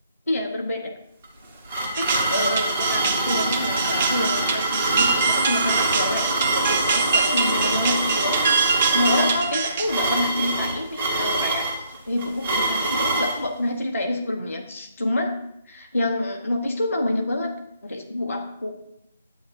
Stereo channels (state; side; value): inverted; both; correlation -0.67